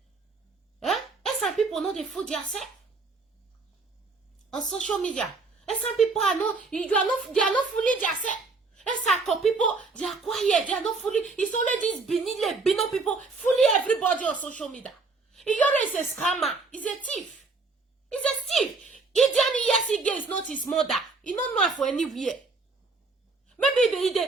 Eh? And some people know they fool themselves on social media. And some people are not, they are not fooling themselves. And some people, they are quiet, they are not fooling. It's only these Bino people fooling everybody on social media. Iyore is a scammer. He's a thief. He's a thief. Idiani Yesige is not his mother. He don't know her for anywhere. Maybe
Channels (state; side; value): quieter; left; 3.9 dB